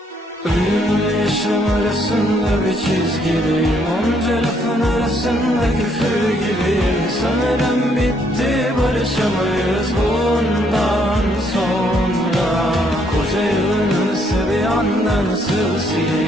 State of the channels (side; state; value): both; normal; correlation 0.70